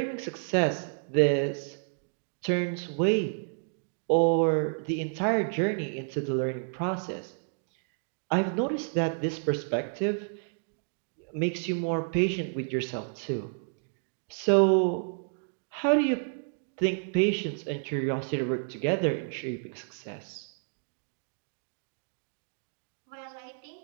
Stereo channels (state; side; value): silent; left; digital silence